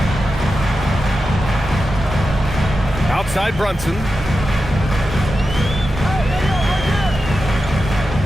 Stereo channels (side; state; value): both; normal; correlation 0.91